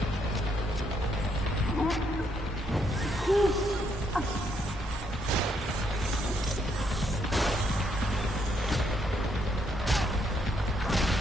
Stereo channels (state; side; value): normal; both; correlation 0.74